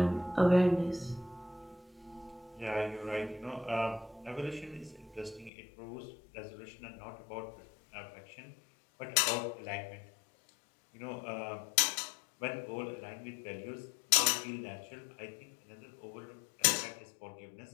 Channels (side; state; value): right; drops out; at 5.5 s